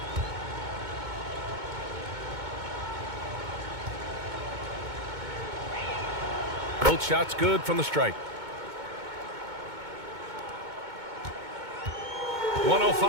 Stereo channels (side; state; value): left; late; 2.2 ms